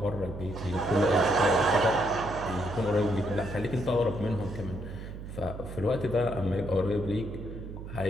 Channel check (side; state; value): right; noise; hum, 10 dB below the sound